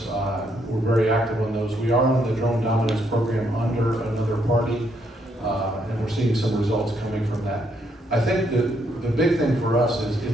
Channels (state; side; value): normal; both; correlation 0.74